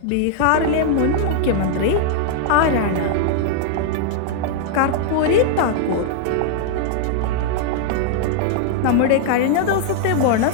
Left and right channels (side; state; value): both; different; correlation -0.01